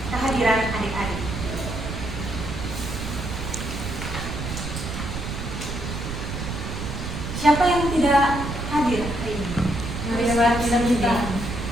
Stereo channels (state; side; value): noise; right; rumble, 5 dB below the sound